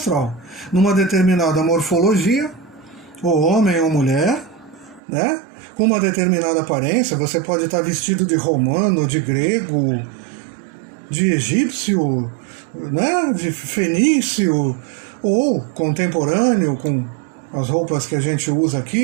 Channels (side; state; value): left; drops out; at 5.0 s